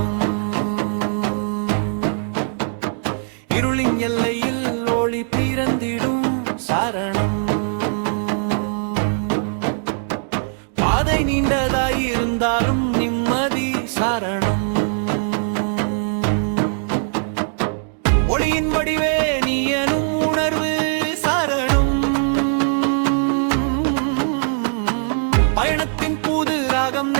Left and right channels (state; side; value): silent; left; digital silence